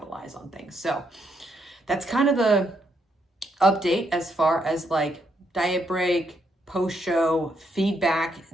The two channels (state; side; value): normal; both; correlation 0.76